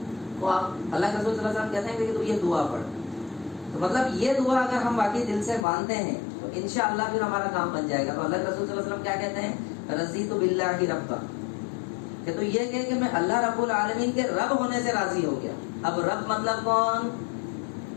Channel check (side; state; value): right; drops out; at 5.7 s